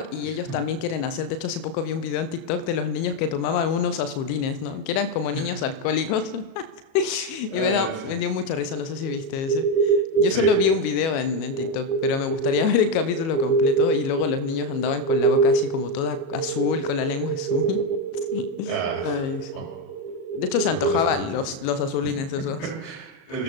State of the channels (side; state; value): right; late; 37 ms